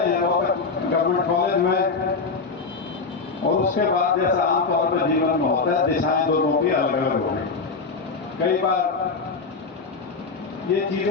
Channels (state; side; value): quieter; right; 4.5 dB